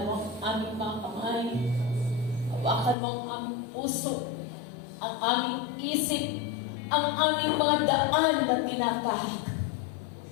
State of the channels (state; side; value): drops out; right; at 3.0 s